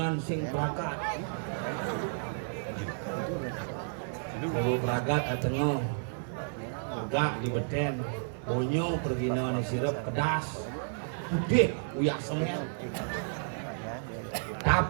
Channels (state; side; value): silent; left; digital silence